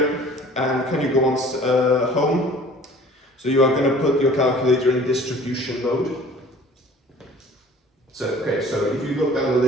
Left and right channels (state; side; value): normal; both; correlation 0.49